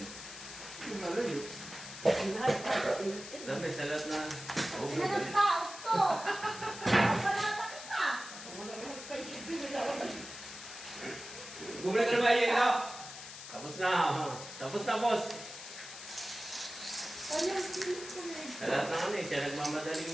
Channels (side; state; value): left; noise; hiss, 12 dB below the sound